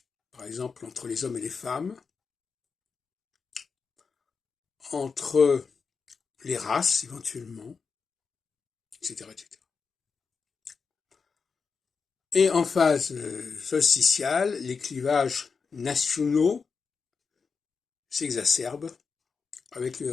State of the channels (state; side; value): quieter; right; 5.3 dB